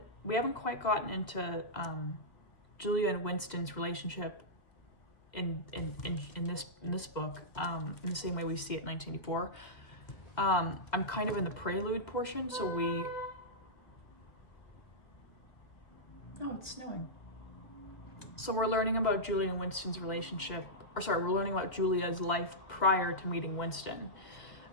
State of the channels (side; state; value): right; late; 1.7 ms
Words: We haven't quite gotten into Julia and Winston's relationship in this book in the same way we see it in 1984. I'm kind of in the prelude portion, so oh, it's snowing. So we're learning about Julia and Winston's relationship, we're learning about Julia's life prior to meeting Winston.